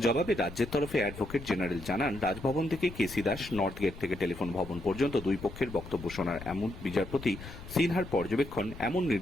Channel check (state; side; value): noise; left; rumble, 13 dB below the sound